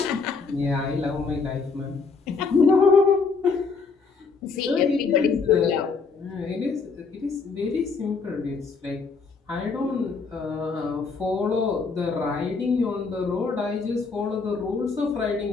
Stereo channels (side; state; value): right; quieter; 4.7 dB